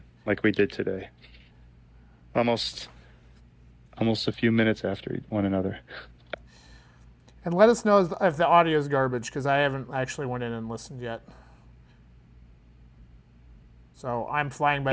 like we did today. Almost a few minutes after one another. And let us know if the audio is garbage, because I haven't actually went in and listened yet. So I'm flying by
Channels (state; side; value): identical; both; correlation 1.00